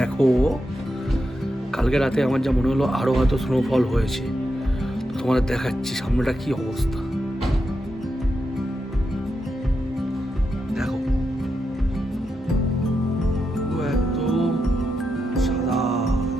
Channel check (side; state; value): both; normal; correlation 0.86